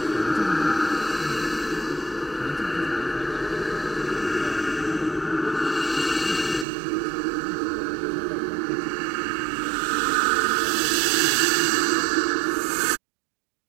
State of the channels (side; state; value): left; drops out; at 6.7 s